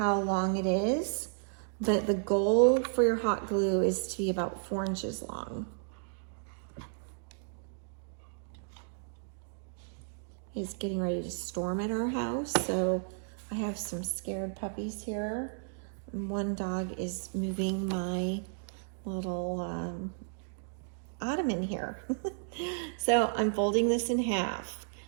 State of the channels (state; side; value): silent; left; digital silence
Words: long it is, but the goal for your hot glue is to be about 4 inches long. It's getting ready to storm at our house, so I have some scared puppies here. One dog is moving my little ottoman here. So I'm folding this in half,